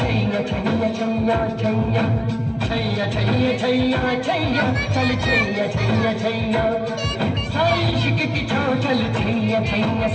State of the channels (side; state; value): both; identical; correlation 1.00